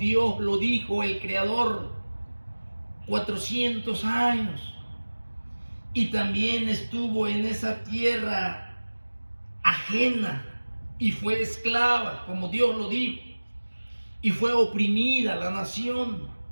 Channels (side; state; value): both; inverted; correlation -1.00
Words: lo dijo, el Creador, 400 años. Y también estuvo en esa tierra ajena y fue esclava, como Dios lo dijo. Y fue oprimida la nación.